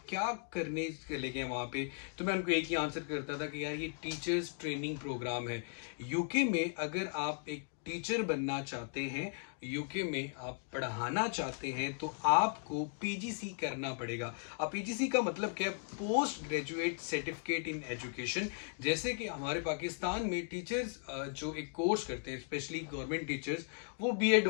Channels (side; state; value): right; silent; 53 dB below the other